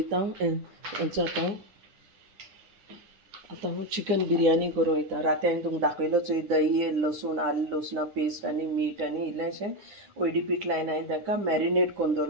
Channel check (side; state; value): left; late; 9.9 ms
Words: हेंचो आतां हांव चिकन बिरयानी करूं वयता राती हांवें तुमकां दाखयलो चोय दही लसूण आलें लसुणा पेस्ट आनी मीठ आनी इल्लेंशें ओयडी पीठ लायन हांवें ताका मॅरिनेट कोन्न